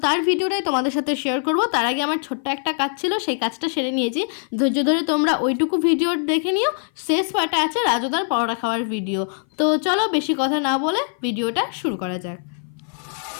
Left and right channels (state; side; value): silent; right; 57 dB below the other